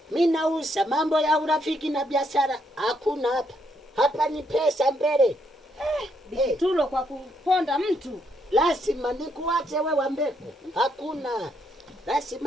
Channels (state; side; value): normal; both; correlation 0.74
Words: Mimi nauza, mambo ya urafiki na biashara hakuna hapa. Hapa ni pesa mbele. Bikitulo kwa kuponda mtu. Lazima nikuache wewe mbeko. Hakuna.